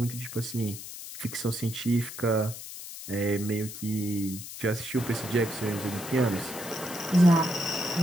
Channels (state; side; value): noise; left; hiss, 11 dB below the sound